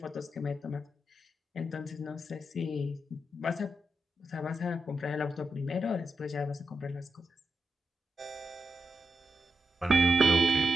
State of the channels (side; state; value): both; normal; correlation 0.86